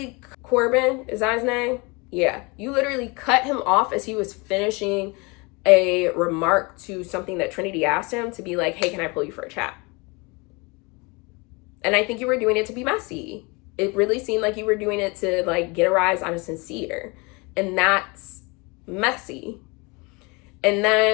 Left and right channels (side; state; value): right; quieter; 27.7 dB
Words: Corbin, is that his name? Yeah. You literally cut him off as he was finishing a remark to something that Trinity asked him, to be like, hey, can I pull you for a chat? And I think you were doing it to be messy. It really seemed like you were doing it to like get a rise out of Sincere. And that's messy. And